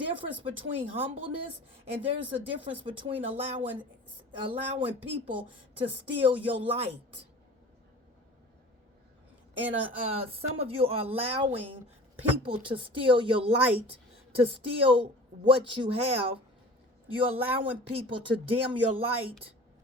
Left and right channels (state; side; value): normal; both; correlation 0.41